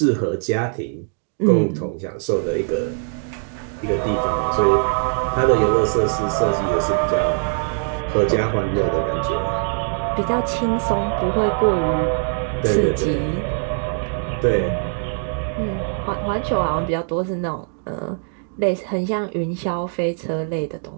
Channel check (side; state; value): left; silent; 61 dB below the other